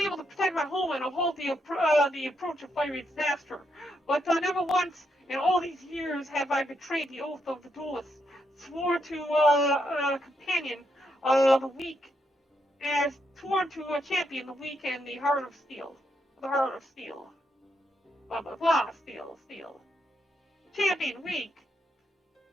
to protect my homeland or halt the approach of fiery disaster. But never once in all these years have I betrayed the oath of the duelists, swore to a companion the weak, and sworn to a champion the weak and the heart of steel. The heart of steel. Blah blah blah, steel. Champion weak.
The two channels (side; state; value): both; normal; correlation 0.80